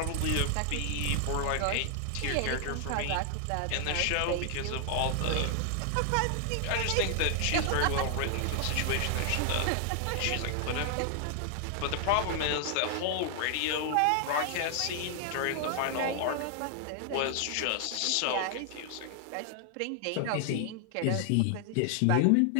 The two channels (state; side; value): different; both; correlation 0.00